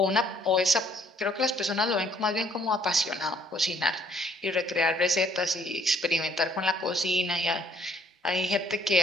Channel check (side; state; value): both; normal; correlation 0.63